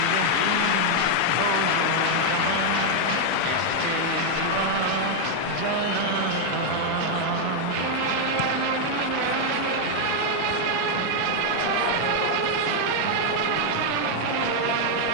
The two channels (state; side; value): different; both; correlation 0.00